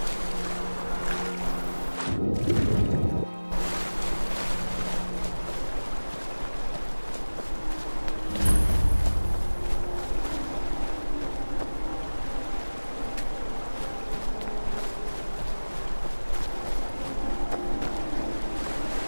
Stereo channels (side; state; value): both; inverted; correlation -1.00